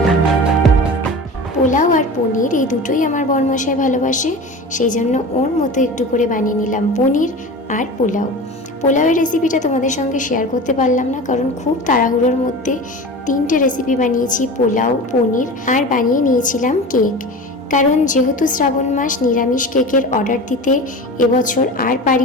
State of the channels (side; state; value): both; normal; correlation 0.32